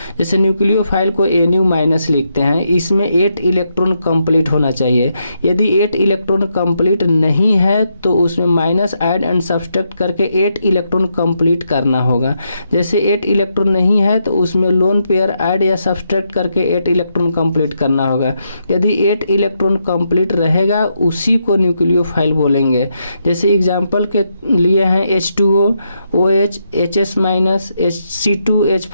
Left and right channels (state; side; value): inverted; both; correlation -0.80